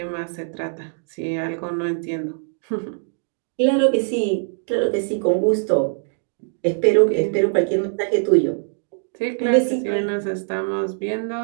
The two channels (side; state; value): left; silent; digital silence